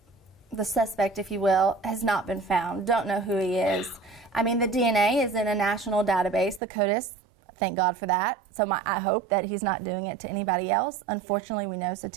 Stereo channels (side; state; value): left; drops out; at 6.6 s